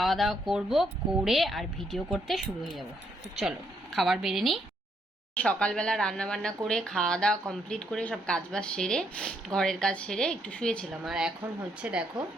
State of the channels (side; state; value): both; normal; correlation 0.74